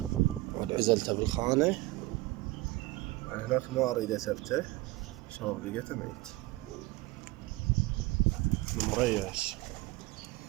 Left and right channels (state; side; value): quieter; left; 19.9 dB